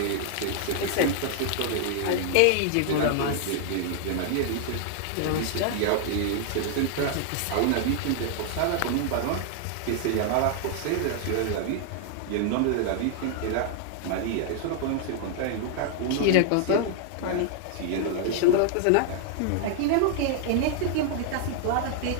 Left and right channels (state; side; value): different; both; correlation 0.00